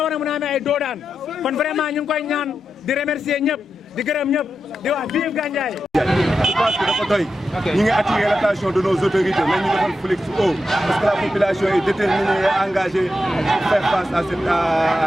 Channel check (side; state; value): both; normal; correlation 0.88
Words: war a mën a amee ay doodaan kon vraiment ñu ngi koy ñaan di remercier ñëpp di gërëm ñëpp di wax vive Gandiaye. Je pense que dafa doy. ñu ngi attirer l'attention de nos autorités nañ ñu defal flic haut parce que la population est déterminée et engagée pour faire face à cette